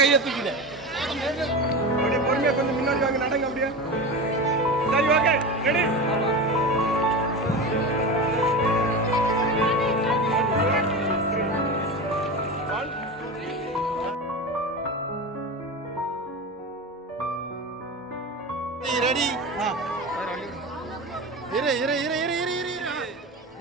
தூக்கிடு. அப்படியே பொறுமையா கொஞ்சம் முன்னாடி வாங்க, நடங்க அப்படியே. சரி, ஓகே, ரெடி. ரெடி. இரு இரு இரு இரு இரு இரு இரு.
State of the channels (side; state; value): both; normal; correlation 0.25